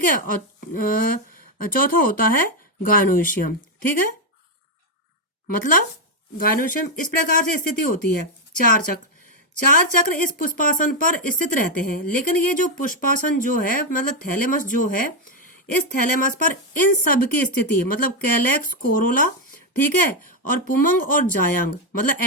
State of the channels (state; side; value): normal; both; correlation 0.03